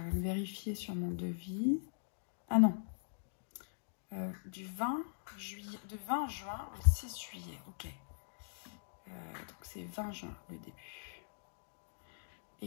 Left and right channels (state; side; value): silent; right; digital silence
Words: même vérifier sur mon devis. Ah non. Du 20 juin au 6 juillet. Ok. Donc, c'est 20 juin le début.